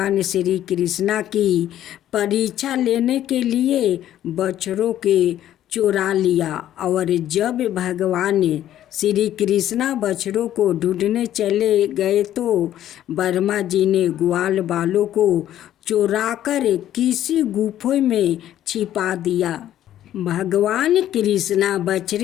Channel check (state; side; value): quieter; right; 12.0 dB